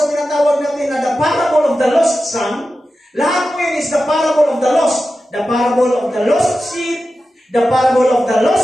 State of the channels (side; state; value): both; normal; correlation 0.92